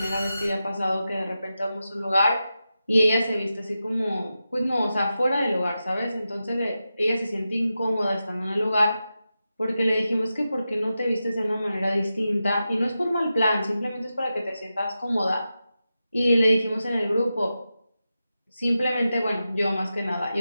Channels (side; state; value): both; inverted; correlation -0.91